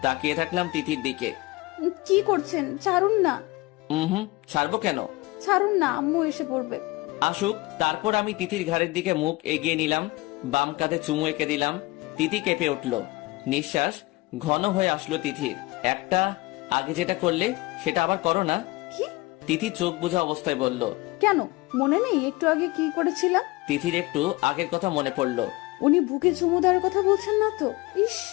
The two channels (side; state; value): right; quieter; 21.7 dB